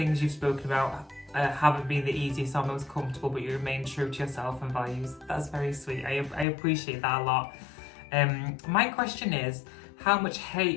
you've spoken about haven't been the easiest or most comfortable, but you remain true to yourself and values. That's very sweet. I appreciate that a lot. My question is, how much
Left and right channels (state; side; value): drops out; right; at 6.5 s